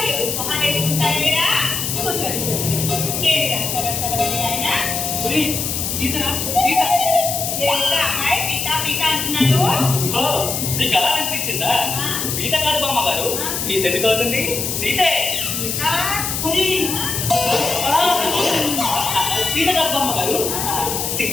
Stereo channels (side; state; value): left; noise; hiss, 2 dB below the sound